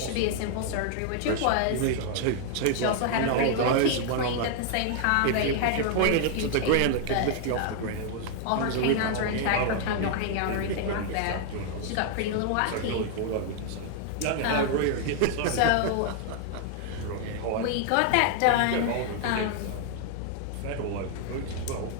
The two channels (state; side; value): different; both; correlation 0.00